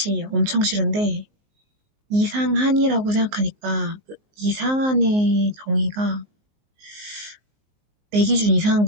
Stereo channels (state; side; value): late; left; 19 ms